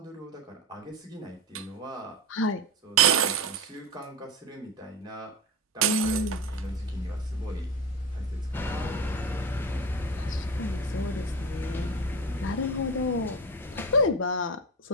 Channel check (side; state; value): both; normal; correlation 0.24